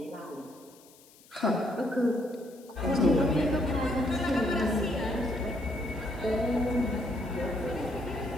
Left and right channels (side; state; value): left; noise; hiss, 26 dB below the sound